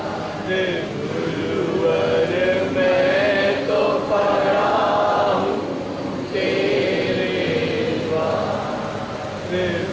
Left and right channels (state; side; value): identical; both; correlation 1.00